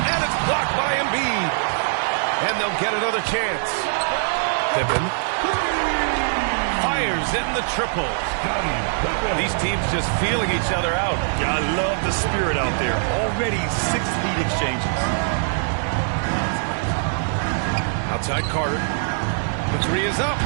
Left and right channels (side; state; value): left; silent; digital silence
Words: And it's blocked by Embiid. And they'll get another chance. Pippen fires in the triple. These teams just feeling each other out. Yeah, I love the spirit out there. Already 6 lead exchanges. Outside Carter. The three is up.